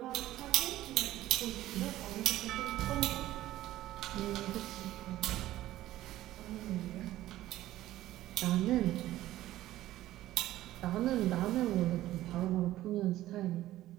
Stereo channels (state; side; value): quieter; left; 14.9 dB